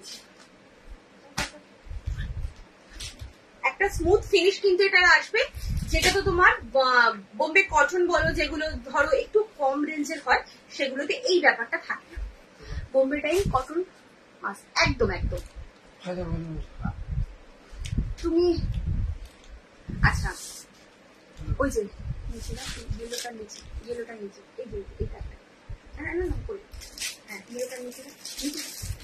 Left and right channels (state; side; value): identical; both; correlation 1.00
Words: একটা স্মুথ ফিনিশ কিন্তু এটা আসবে। যেটা তো তোমার বোম্বে কটন বলো, যেগুলো ধরো একটু কম রেঞ্জের হয়, সেগুলোতে এই ব্যাপারটা থাকে না। বোম্বে ডাইং কটন একদম একদম। তুমি আচ্ছা, ওই যে নিচে না, ইয়েলোটার নিচে, ইয়েলোটার নিচে, এই যে এটা না না না করে, হ্যাঁ ইয়েলোটার নিচে নিচে,